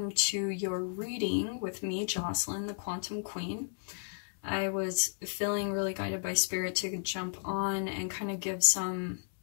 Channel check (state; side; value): silent; right; digital silence